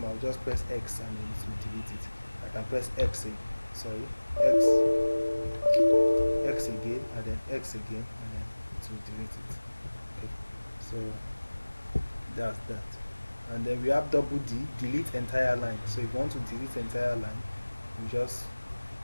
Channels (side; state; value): both; inverted; correlation -1.00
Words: I'll just press X and then it will delete it. I can press X again, and then X again, and then it will delete it. Okay, so that's that. And then we have double D, delete entire line. So if you want to delete entire line, you just,